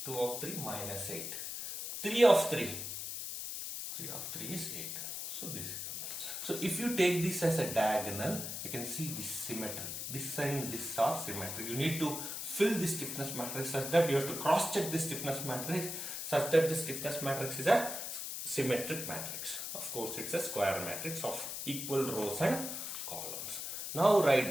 2 of 3 minus 8. 3 of 3. 3 of 3 is 8. So this is complete. So if you take this as a diagonal, you can see this symmetric. This and this are symmetric. You need to fill the stiffness matrix such that you have to cross check the stiffness matrix such that the stiffness matrix is a symmetric matrix. Of course, it's a square matrix of equal rows and columns. Now write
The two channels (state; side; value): noise; left; hiss, 5 dB below the sound